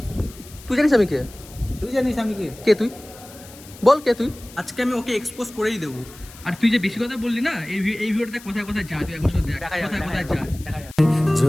তুই জানিস আমি কে? তুই জানিস আমি কে? কে তুই? বল কে তুই? আজকে আমি ওকে এক্সপোজ করেই দেবো। আর তুই যে বেশি কথা বললি না, এই ভিডিওটা কোথায় কোথায় যায়, তুই একবার শুধু দেখ কোথায় কোথায় যায়।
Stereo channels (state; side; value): noise; left; hiss, 20 dB below the sound